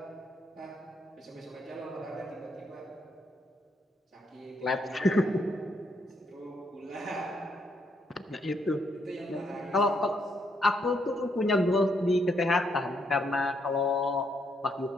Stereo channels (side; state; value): both; normal; correlation 0.75